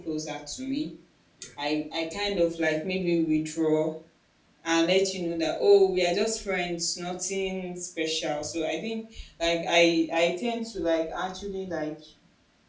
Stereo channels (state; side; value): identical; both; correlation 1.00